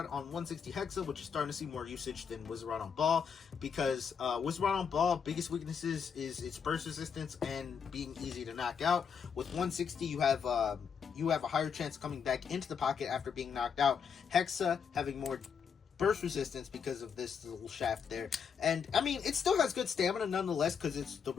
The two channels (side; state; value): right; quieter; 6.7 dB